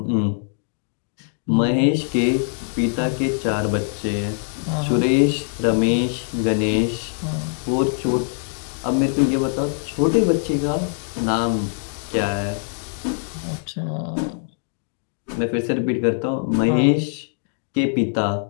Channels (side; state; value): right; silent; digital silence